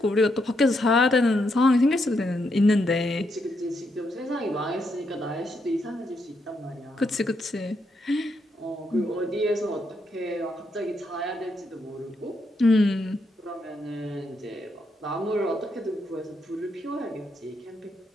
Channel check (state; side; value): normal; both; correlation 0.79